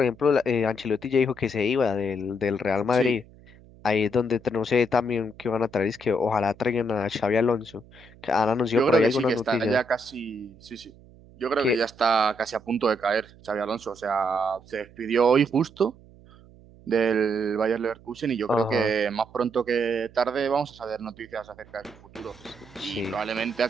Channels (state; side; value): noise; right; hum, 24 dB below the sound